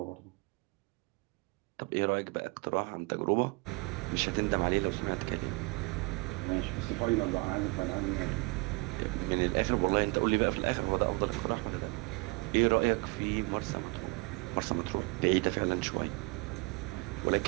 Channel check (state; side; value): quieter; left; 27.5 dB